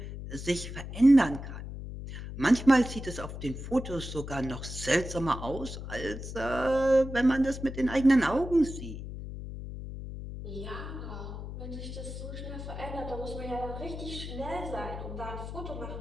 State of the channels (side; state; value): left; noise; hum, 9 dB below the sound